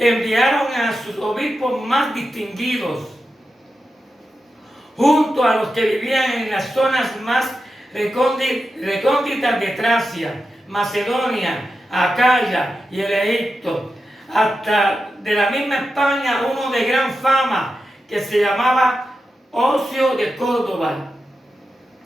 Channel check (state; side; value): normal; both; correlation 0.90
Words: a sus obispos más distinguidos, junto a los que vivían en las zonas más recónditas de Tracia, Macedonia, Acaya y el Egipto, hasta de la misma España uno de gran fama que se llamaba Ocio de Córdoba.